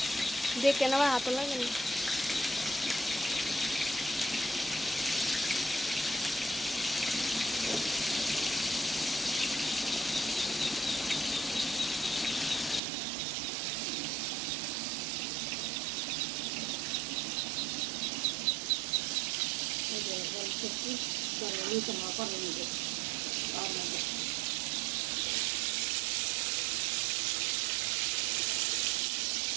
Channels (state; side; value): drops out; left; at 12.8 s